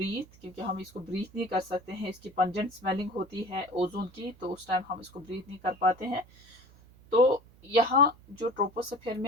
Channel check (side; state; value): right; noise; hum, 25 dB below the sound